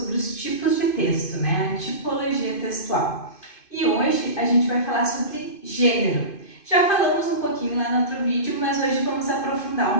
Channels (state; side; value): late; right; 2.5 ms